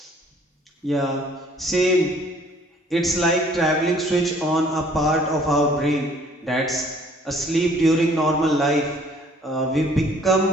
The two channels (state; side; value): normal; both; correlation 0.58